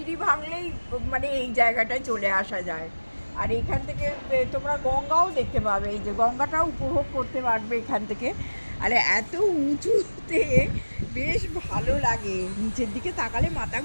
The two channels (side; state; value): both; inverted; correlation -1.00